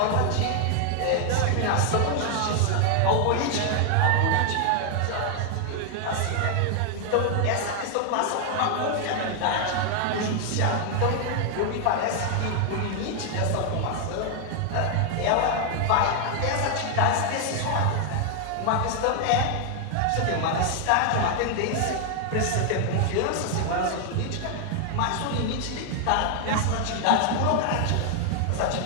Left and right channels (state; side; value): different; both; correlation 0.00